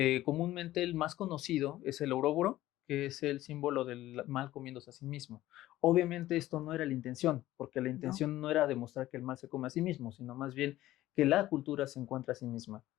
Comúnmente el más conocido es el Ouroboros, que es el símbolo del mal comiéndose a sí mismo. Obviamente esto no era la intención, porque la No. intención no era demostrar que el mal se come a sí mismo, sino más bien que la cultura se encuentra a sí misma.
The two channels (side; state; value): right; quieter; 15.3 dB